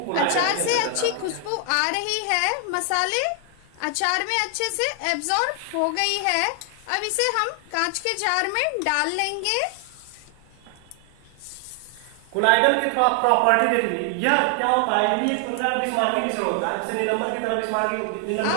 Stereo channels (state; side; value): different; both; correlation 0.00